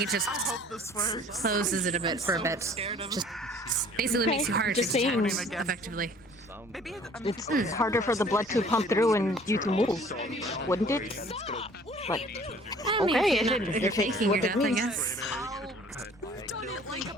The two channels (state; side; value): normal; both; correlation 0.53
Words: it just closes it a bit for a bit. Just basically makes you harder to detect effectively. It's harder for the blood to pump through and you to move, wouldn't it? But, okay, if you're faking your death, I guess.